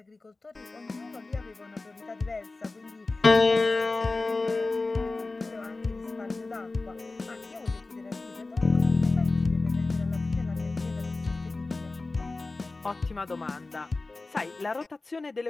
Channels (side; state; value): right; quieter; 3.4 dB